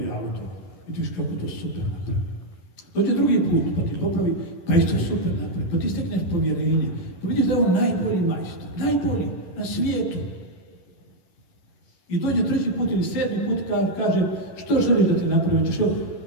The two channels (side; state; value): right; late; 11 ms